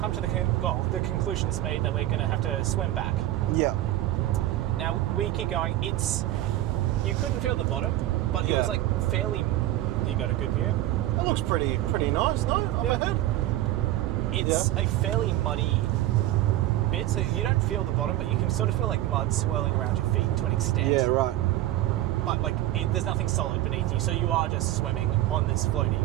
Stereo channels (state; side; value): quieter; left; 14.8 dB